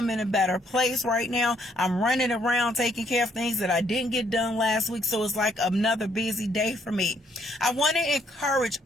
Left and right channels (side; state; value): both; normal; correlation 0.69